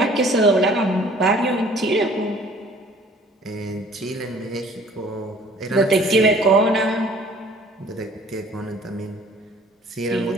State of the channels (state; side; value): normal; both; correlation 0.53